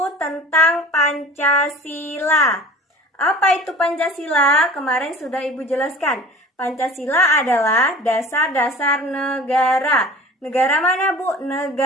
tentang Pancasila. Apa itu Pancasila? Kemarin sudah ibu jelaskan. Pancasila adalah dasar-dasar negara. Negara mana, Bu?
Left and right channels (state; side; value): normal; both; correlation 0.42